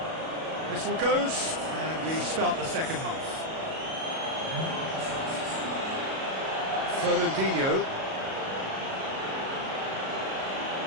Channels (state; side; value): late; left; 37 ms